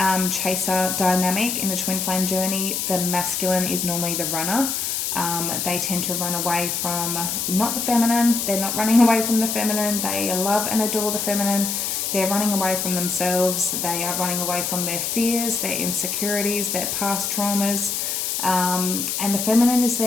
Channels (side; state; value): left; noise; hiss, 1 dB below the sound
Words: chaser dynamic in a twin flame journey, the masculine is normally the runner. They tend to run away from not the feminine. They're not running away from the feminine. They love and adore the feminine. They're running away from themselves. They are running away from their fears, their insecurities, their past traumas. And the feminine is